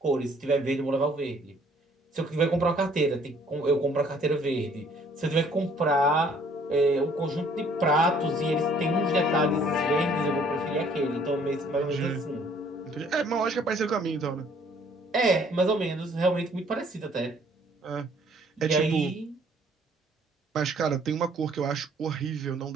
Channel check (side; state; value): both; normal; correlation 0.60